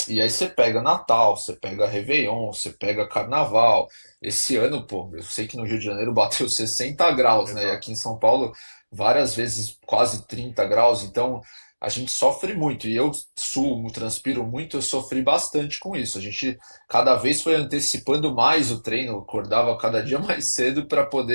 e aí você pega Natal, você pega Réveillon, você pega Carnaval. Esse ano, pô, eu sei que no Rio de Janeiro bateu 60 graus, né, e aqui Exato. em São Paulo várias vezes quase 30 graus, então a gente sofre muito, e eu sumo, transpiro muito, eu sofri bastante com isso. A gente cada vez foi antecipando mais o treino, acordava cada dia mais cedo para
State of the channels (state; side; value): inverted; both; correlation -1.00